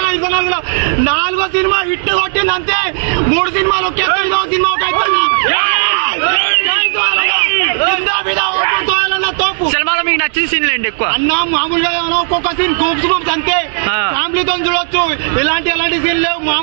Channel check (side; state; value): left; silent; digital silence